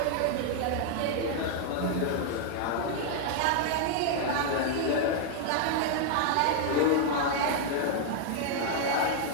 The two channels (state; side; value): different; both; correlation 0.00